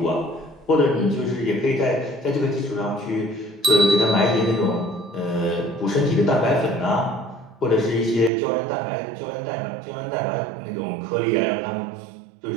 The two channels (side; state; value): left; drops out; at 8.3 s